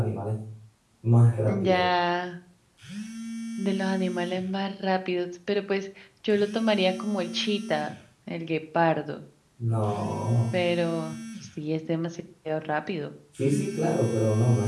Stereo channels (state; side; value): identical; both; correlation 1.00